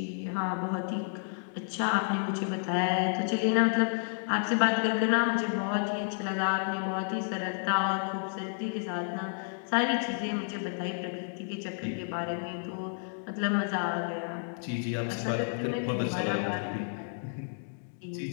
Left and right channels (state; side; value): silent; right; digital silence